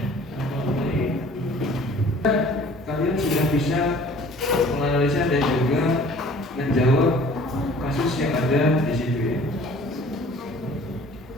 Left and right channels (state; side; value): normal; both; correlation 0.51